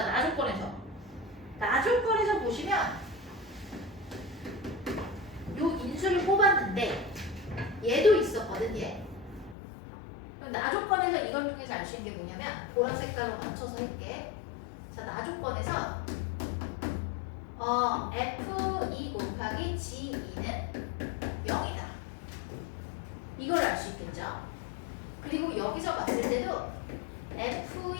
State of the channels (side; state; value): right; drops out; at 9.6 s